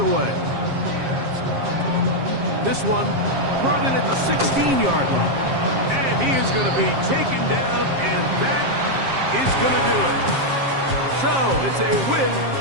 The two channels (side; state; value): left; late; 7.5 ms